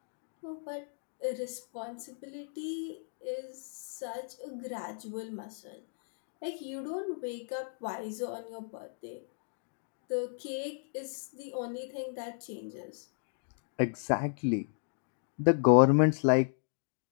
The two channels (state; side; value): silent; right; digital silence